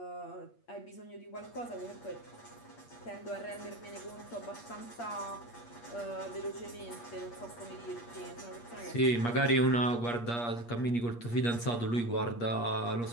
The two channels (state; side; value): late; right; 8.5 ms